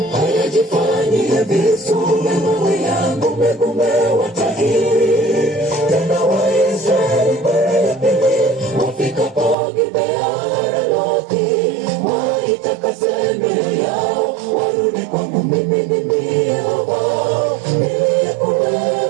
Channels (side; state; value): left; drops out; at 9.6 s